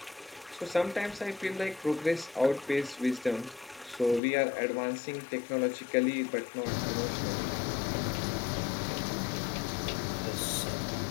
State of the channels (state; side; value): drops out; right; at 4.2 s